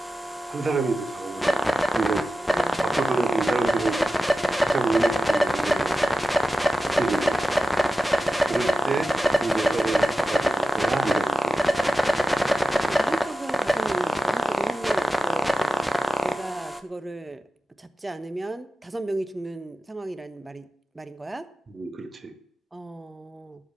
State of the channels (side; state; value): both; normal; correlation 0.94